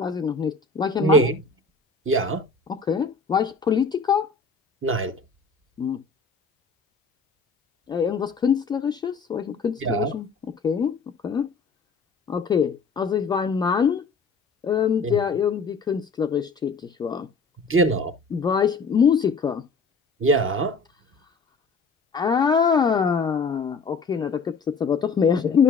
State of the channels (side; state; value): right; quieter; 4.2 dB